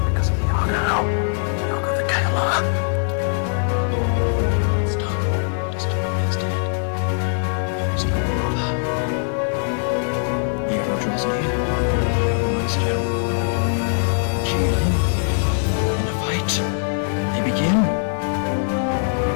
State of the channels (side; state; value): right; silent; digital silence